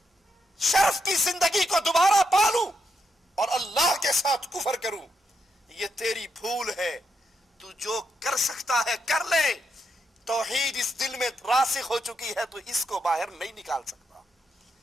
شرف کی زندگی کو دوبارہ پالوں اور اللہ کے ساتھ کفر کروں، یہ تیری بھول ہے، تو جو کر سکتا ہے کر لے، توحید اس دل میں راسخ ہو چکی ہے تو اس کو باہر نہیں نکال سکتا۔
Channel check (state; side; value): normal; both; correlation 0.81